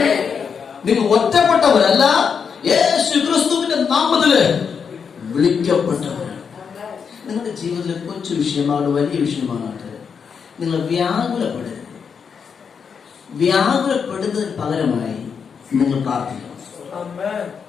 നിങ്ങൾ ഒറ്റപ്പെട്ടവരല്ല, യേശു ക്രിസ്തുവിന്റെ നാമത്തില് വിളിക്കപ്പെട്ടവരാണ്. നിങ്ങളുടെ ജീവിതത്തിലെ കൊച്ചു വിഷയമാകട്ടെ വലിയ വിഷയമാകട്ടെ, നിങ്ങൾ വ്യാകുലപ്പെടരുത്. വ്യാകുലപ്പെടുന്നതിന് പകരമായി നിങ്ങൾ പ്രാർത്ഥിക്കണം.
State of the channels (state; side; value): quieter; right; 6.4 dB